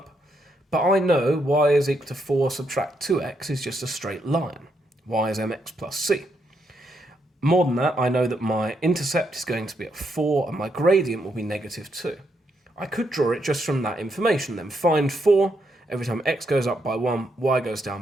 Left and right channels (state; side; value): normal; both; correlation 0.79